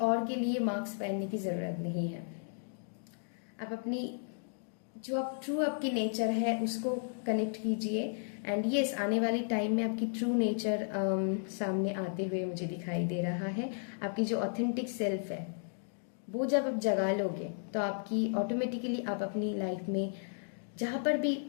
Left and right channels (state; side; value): silent; right; digital silence